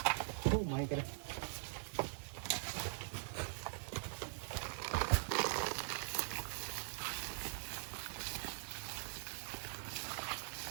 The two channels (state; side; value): silent; left; digital silence